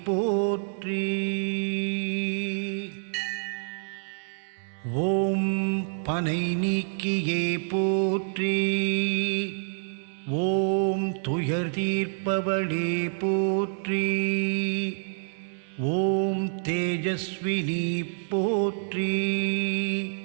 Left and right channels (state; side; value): silent; left; 60 dB below the other